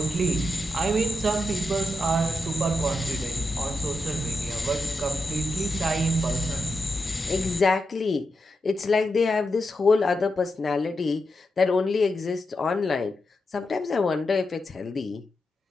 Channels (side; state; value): both; normal; correlation 0.87